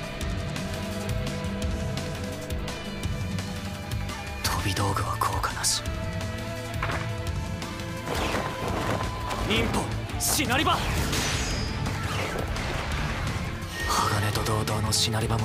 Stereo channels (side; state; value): both; identical; correlation 1.00